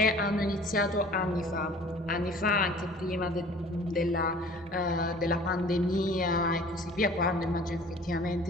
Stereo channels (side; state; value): both; normal; correlation 0.48